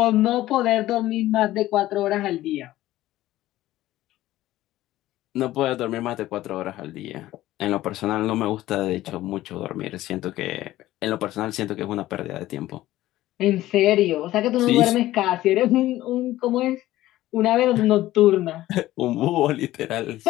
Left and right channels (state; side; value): quieter; right; 15.5 dB